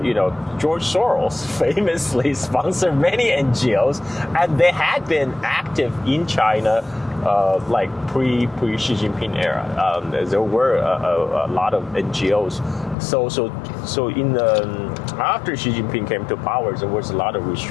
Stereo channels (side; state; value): right; drops out; at 13.0 s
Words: Soros famously sponsored many NGOs, and they had been active in China like pre Xi Jinping era. There were a lot of NGOs. So in after Xi Jinping came to power, there was a lot of